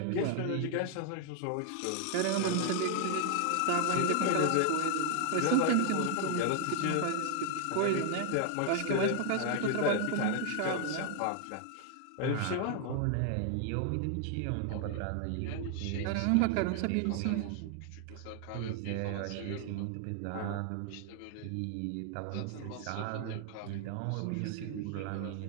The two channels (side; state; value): both; different; correlation 0.00